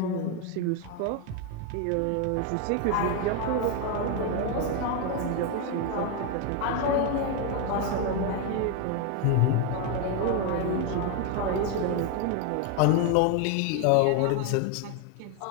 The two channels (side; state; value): both; different; correlation 0.01